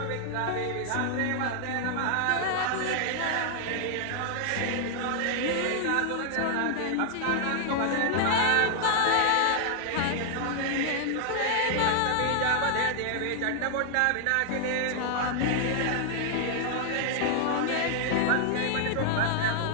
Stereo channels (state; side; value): different; both; correlation 0.00